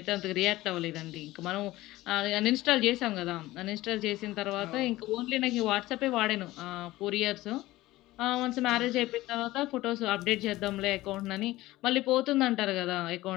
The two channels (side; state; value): right; quieter; 17.6 dB